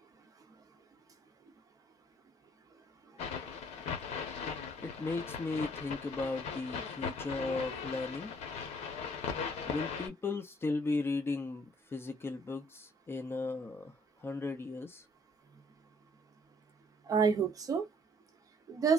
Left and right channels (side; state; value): both; normal; correlation 0.61